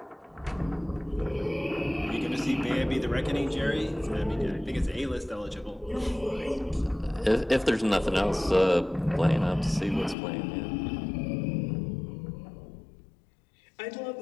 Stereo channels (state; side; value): drops out; right; at 10.2 s